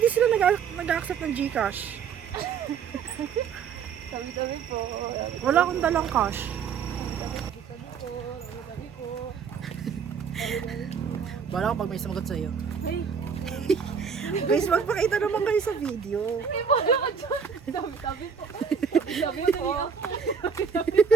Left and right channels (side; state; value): left; quieter; 6.6 dB